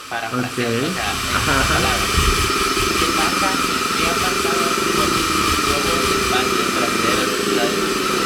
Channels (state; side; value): identical; both; correlation 1.00